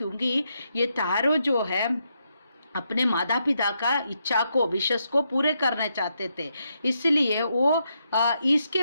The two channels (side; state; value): both; inverted; correlation -0.80